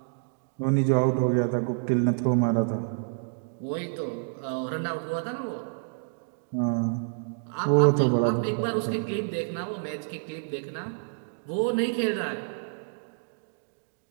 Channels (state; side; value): silent; left; digital silence